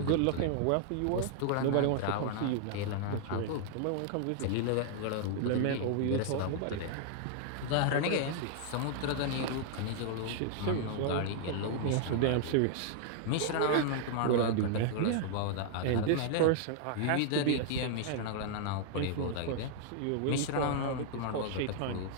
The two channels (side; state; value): both; different; correlation -0.01